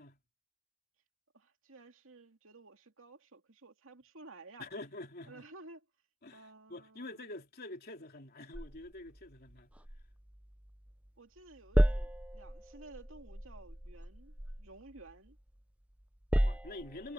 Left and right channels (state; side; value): normal; both; correlation 0.94